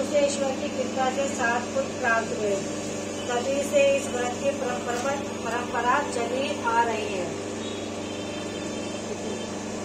ईश्वर की कृपा से 7 पुत्र प्राप्त हुए। तभी से इस व्रत की परंपरा चली आ रही है।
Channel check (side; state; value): both; identical; correlation 1.00